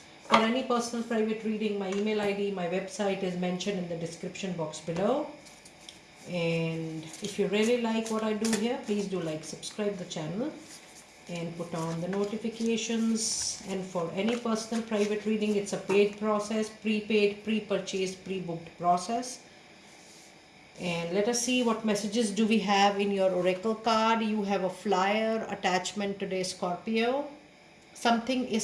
For any personal private reading, my email ID, my website is mentioned in the description box below. And if you really like what I do here, please do like, subscribe the channel and put on the notifications. And for any personal private reading, it's a paid process, prepaid, pre-purchased, pre-booked process. And let us see what messages do we have in your oracle card. You have a flyer attachment today, Scorpio. Something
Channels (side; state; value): both; identical; correlation 1.00